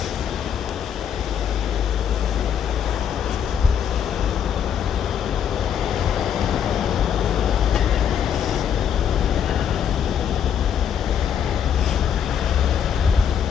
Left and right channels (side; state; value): right; quieter; 8.4 dB